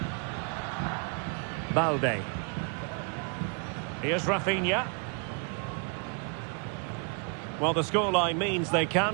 Balde. Here's Rafinha. Well, the scoreline means they can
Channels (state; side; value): quieter; left; 36.2 dB